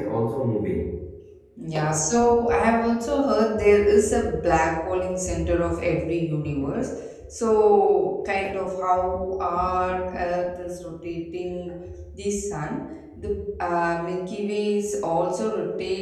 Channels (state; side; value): identical; both; correlation 1.00